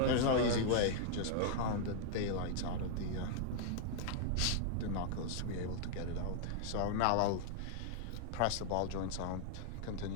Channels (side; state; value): both; different; correlation -0.01